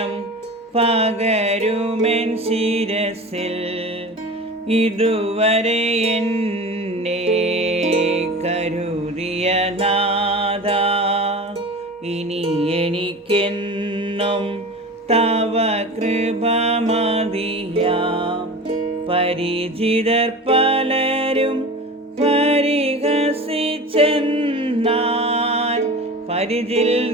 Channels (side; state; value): both; normal; correlation 0.33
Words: പകരുമെൻ ശിരസിൽ. ഇതുവരെ എന്നെ കരുതിയ നാഥ, ഇനി എനിക്കെന്നും തവ കൃപ മതിയാം. പരിചിതർ പലരും പരിഹസിച്ചെന്നാൽ പരിചിൽ